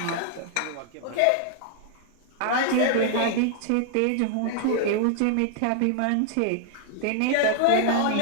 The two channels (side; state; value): both; different; correlation 0.00